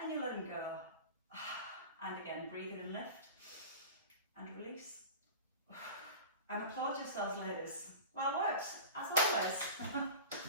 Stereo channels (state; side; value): inverted; both; correlation -0.33